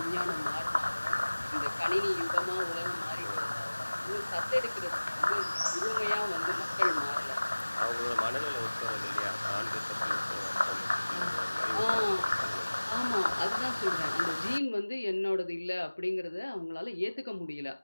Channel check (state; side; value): inverted; both; correlation -1.00